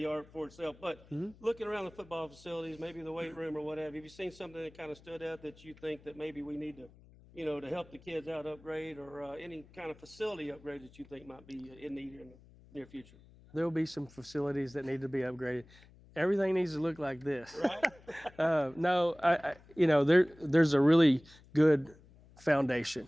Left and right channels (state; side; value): noise; left; hum, 24 dB below the sound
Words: for itself. But looking around the football facilities, maybe the weight room or whatever, have you seen something that kind of stood out that you think that maybe we need to, to help the kids out upgrade, or any kind of facility upgrade that you think might be in need here in the near future? There will be some facilities that need to be upgraded. Everything needs to look like this. Right? No, there's a really good foundation.